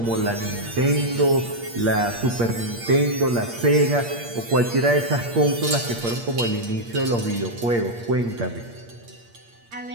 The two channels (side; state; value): left; late; 8.6 ms